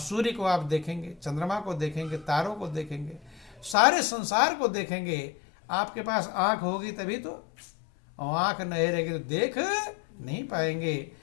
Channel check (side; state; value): right; drops out; at 3.8 s